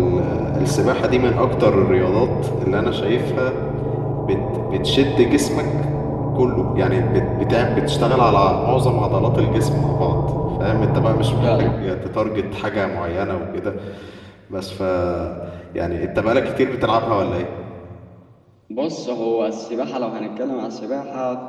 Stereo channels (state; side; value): identical; both; correlation 1.00